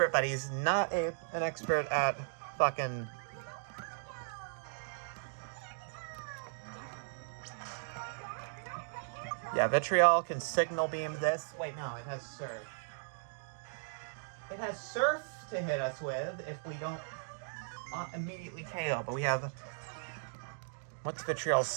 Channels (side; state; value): left; silent; digital silence